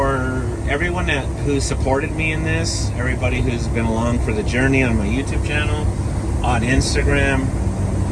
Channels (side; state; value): both; identical; correlation 1.00